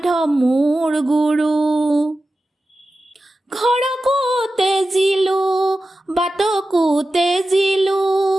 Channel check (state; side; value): normal; both; correlation 0.93